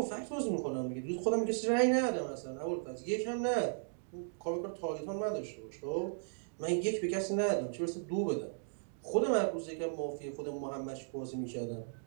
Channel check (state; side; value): silent; left; digital silence